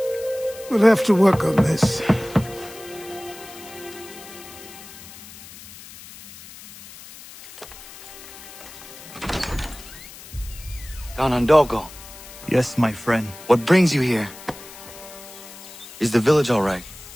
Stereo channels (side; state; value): left; noise; hiss, 17 dB below the sound